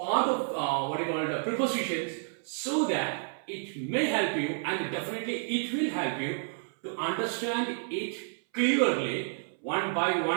of prepositions so that it may help you, and definitely it will help you to understand it clearly one by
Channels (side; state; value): left; silent; 58 dB below the other